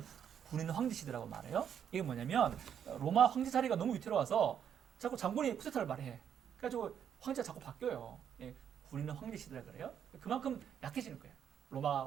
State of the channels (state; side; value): quieter; left; 8.6 dB